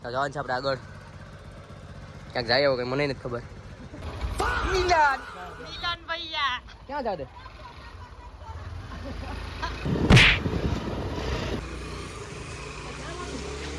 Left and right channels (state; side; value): identical; both; correlation 1.00